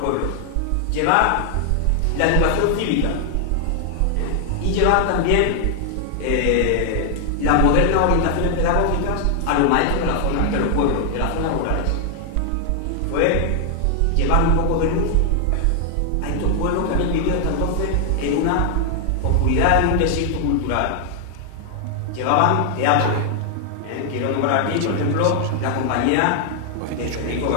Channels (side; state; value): both; different; correlation 0.00